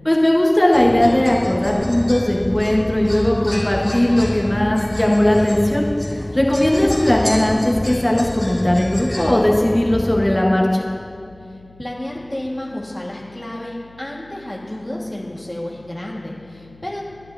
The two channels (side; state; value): left; noise; hum, 28 dB below the sound